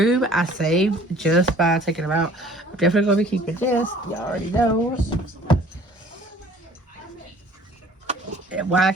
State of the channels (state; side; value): normal; both; correlation 0.52